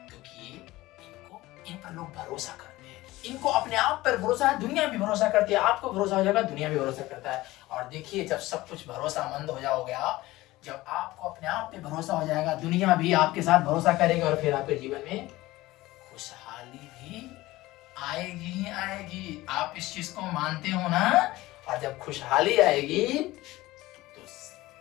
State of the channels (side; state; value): right; quieter; 18.2 dB